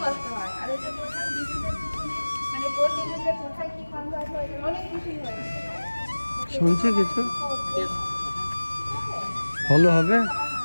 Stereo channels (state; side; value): inverted; both; correlation -1.00